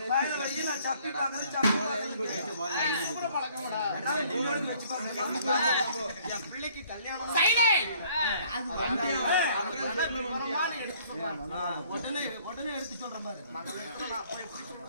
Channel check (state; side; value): inverted; both; correlation -0.59